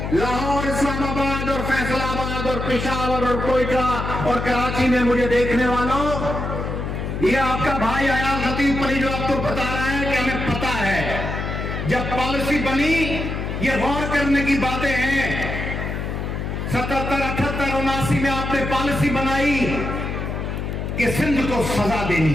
لاہور, اسلام آباد اور فیصل آباد اور پشاور اور کوئٹہ اور کراچی میں مجھے دیکھنے والوں, یہ آپ کا بھائی آیا خطیب پلی جو آپ کو بتا رہا ہے کہ ہمیں پتا ہے جب پالیسی بنی, یہ غور کرنے کی باتیں ہیں. 77, 78, 79 میں آپ نے پالیسی بنائی کہ سندھ کو سزا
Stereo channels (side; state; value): left; noise; hum, 4 dB below the sound